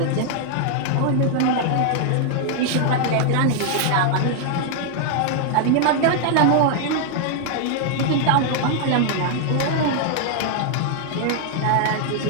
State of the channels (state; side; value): different; both; correlation 0.00